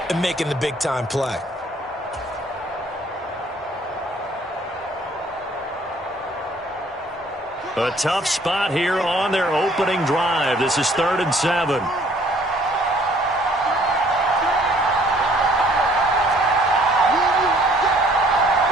and making the big-time play? A tough spot here on their opening drive. This is 3rd and 7.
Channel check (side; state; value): both; normal; correlation 0.59